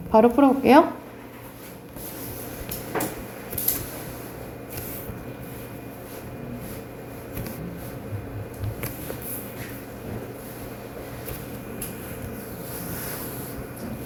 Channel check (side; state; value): both; identical; correlation 1.00